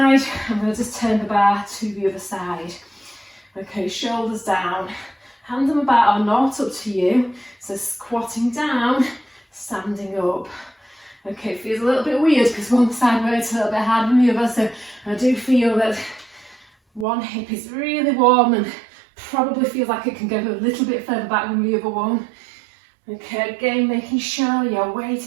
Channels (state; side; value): drops out; left; at 17.1 s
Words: I'm going to just turn the bar to the other side. Okay, shoulders down, hands on the bar or not, up to you. So squatting down, standing up. Okay, it feels a little bit weird because one side works a little bit harder than the other, so I do feel that one hip is really warm and probably feels like it can go a little bit further back than the other one. Okay, again, making sure your